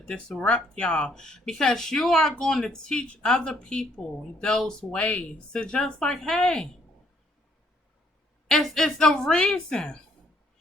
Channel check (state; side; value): normal; both; correlation 0.67